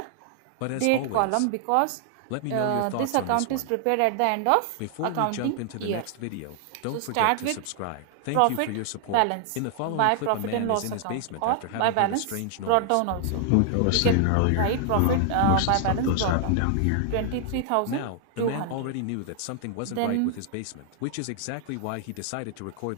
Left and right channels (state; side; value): different; both; correlation 0.00